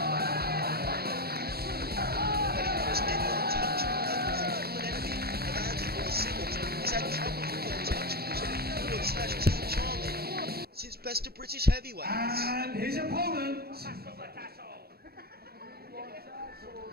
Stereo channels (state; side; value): late; left; 0.45 ms